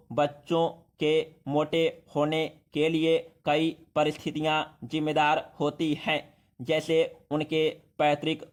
बच्चों के मोटे होने के लिए कई परिस्थितियां जिम्मेदार होती हैं, जैसे उनके पैतृक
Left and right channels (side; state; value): both; identical; correlation 1.00